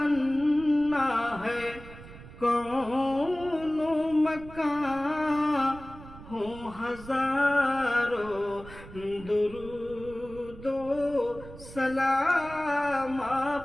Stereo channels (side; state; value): right; noise; rumble, 17 dB below the sound